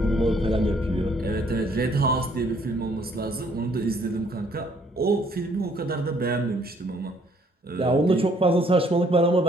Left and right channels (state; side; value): normal; both; correlation 0.64